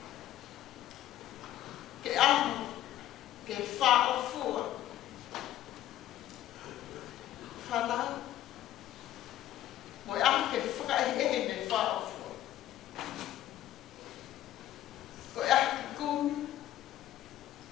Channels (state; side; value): quieter; right; 13.2 dB